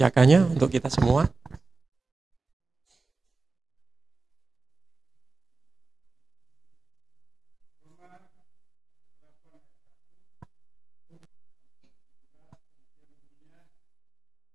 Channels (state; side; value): quieter; left; 3.8 dB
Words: untuk kita semua.